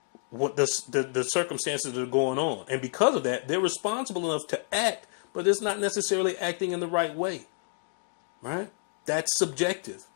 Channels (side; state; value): right; silent; digital silence